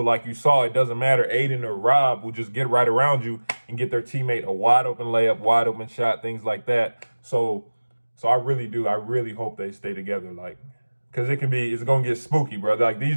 like you saw, it doesn't matter. Aden or Rob will just get right around you and get their teammate a wide open layup, wide open shot, things like that. So I really hope they stay together. Like, because it's going to get spooky, bro. Like these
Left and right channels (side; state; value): both; inverted; correlation -1.00